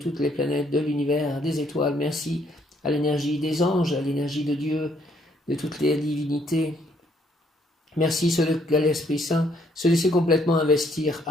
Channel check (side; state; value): both; normal; correlation 0.68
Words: toutes les planètes, de l'univers, des étoiles. Merci à l'énergie des anges, à l'énergie de Dieu, de toutes les divinités. Merci à l'Esprit Saint, se laisser complètement investir,